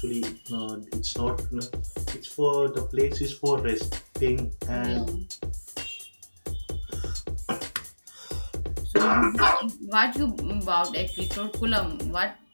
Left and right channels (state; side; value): inverted; both; correlation -1.00